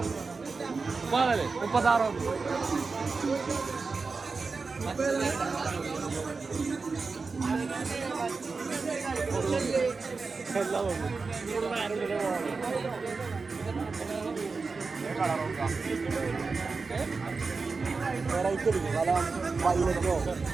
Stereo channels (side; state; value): left; quieter; 4.4 dB